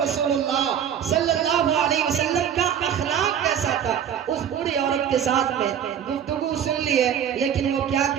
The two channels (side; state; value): left; quieter; 9.0 dB